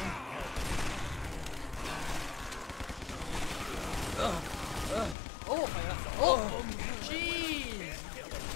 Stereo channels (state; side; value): drops out; right; at 5.2 s